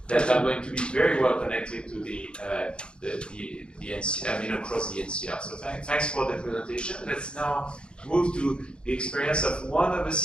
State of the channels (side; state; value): right; late; 0.053 ms